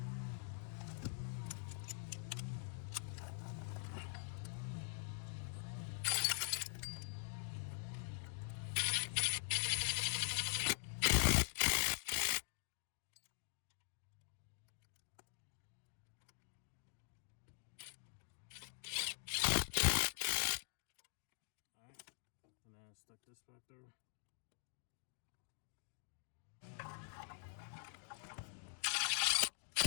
And then stick this back there.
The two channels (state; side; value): silent; right; digital silence